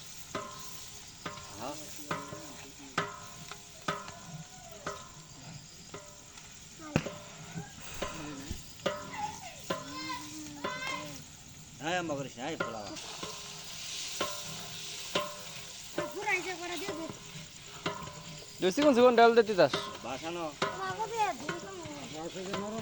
হ্যাঁ হ্যাঁ আম্মা করিস না পোলাও চিকন চিকন ডাল দে তিতাস বাসানো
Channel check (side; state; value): both; identical; correlation 1.00